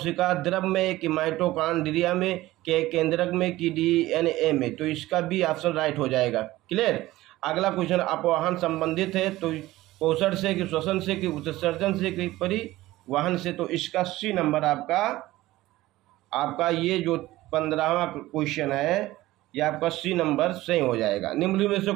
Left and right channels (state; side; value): quieter; left; 17.2 dB